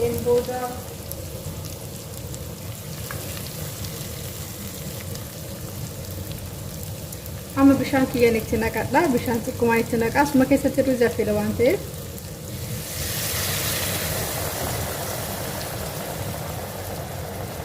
booda amma bishaan kiyyaan itti naqadha. Bishaan xiqqoomaan itti naqaa. Asuma keessatti ruuzi affeela waan ta'eef.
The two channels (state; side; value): identical; both; correlation 1.00